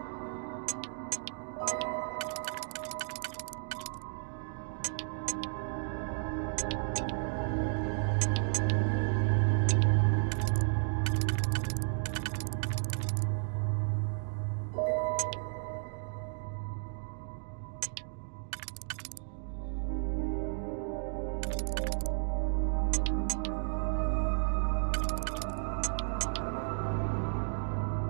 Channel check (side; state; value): left; silent; 55 dB below the other